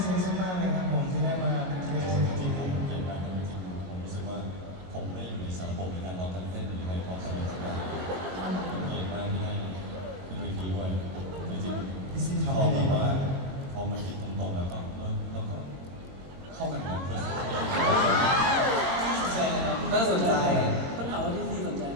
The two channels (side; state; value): left; late; 22 ms